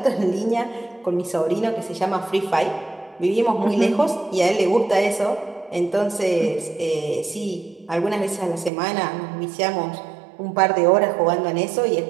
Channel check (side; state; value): left; drops out; at 8.7 s